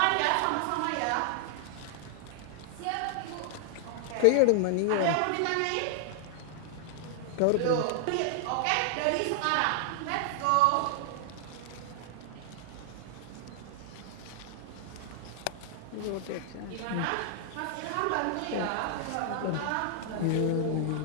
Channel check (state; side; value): different; both; correlation 0.00